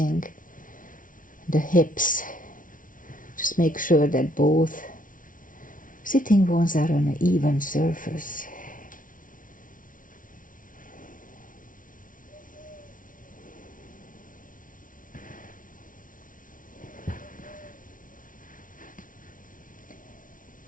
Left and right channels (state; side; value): late; right; 0.38 ms